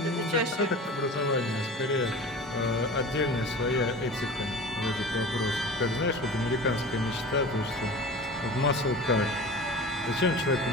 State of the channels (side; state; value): both; normal; correlation 0.36